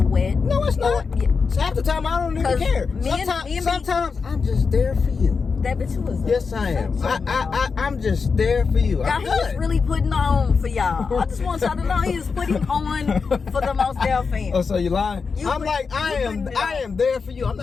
wet. No, it's not. So half the time I don't even care. Sometimes I'm just there for you. That bitch was. Yes, I am. I'm just there for you. God, he is really putting on for y'all. I just want y'all to know he is putting on for the most Dell fans. Oh, so you lying? I am there for you. I'm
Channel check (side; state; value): right; quieter; 5.1 dB